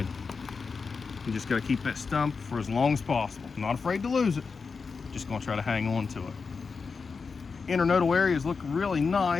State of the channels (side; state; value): right; quieter; 5.0 dB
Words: You just got to keep that stump for as long as possible. I'm not afraid to lose it, just going to try to hang on to it. Internodal areas look really